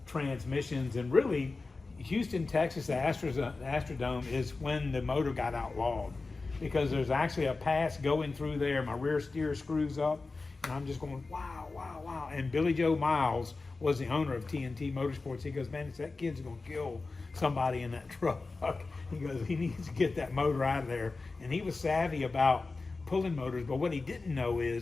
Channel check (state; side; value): quieter; right; 3.8 dB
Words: transmissions, and really, Houston, Texas, the Astrodome is when the motor got outlawed, because there's actually a pass going through there. My rear steer screws up, and I'm just going, wow, wow, wow. And Billy Joe Miles was the owner of TNT Motorsports. He goes, man, that kid's going to kill somebody in that truck. He goes, he needs to get that motor out of there. And he was savvy about pulling motors, but what he didn't know